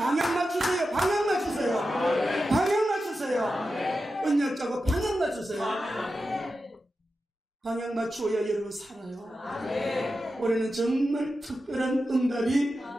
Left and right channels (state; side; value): normal; both; correlation 0.91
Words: 맞추세요. 언약자고 방향 맞추세요. 방향 맞추어야 여러분 살아요. 올해는 정말 특별한 응답이